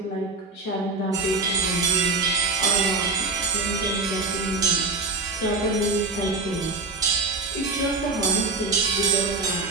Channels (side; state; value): left; quieter; 3.5 dB